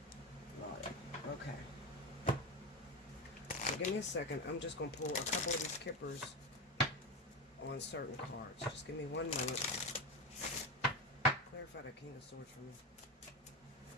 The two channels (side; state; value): both; normal; correlation 0.18